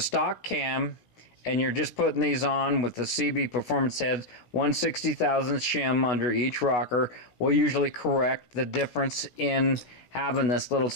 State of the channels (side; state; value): right; late; 16 ms